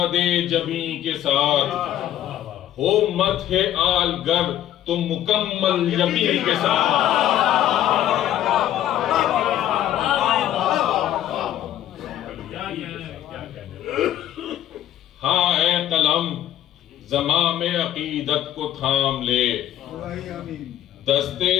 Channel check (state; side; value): quieter; right; 12.1 dB